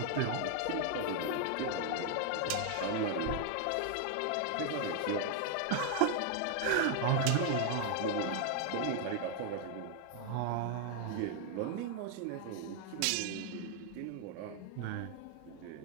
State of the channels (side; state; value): both; different; correlation 0.00